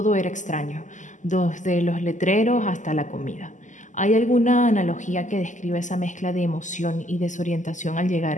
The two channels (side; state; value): right; late; 0.36 ms